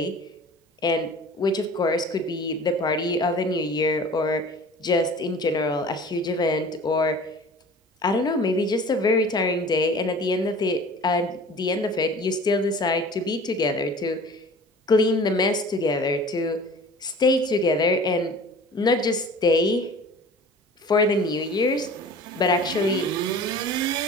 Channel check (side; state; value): both; normal; correlation 0.43